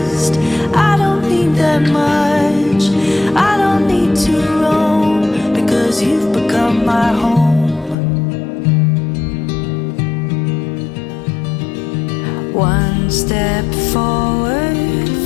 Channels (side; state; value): right; drops out; at 8.0 s